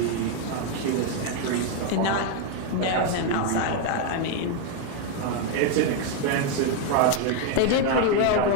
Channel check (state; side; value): different; both; correlation 0.01